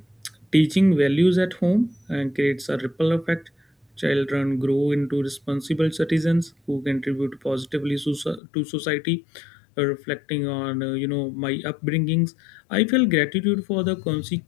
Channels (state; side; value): drops out; right; at 8.4 s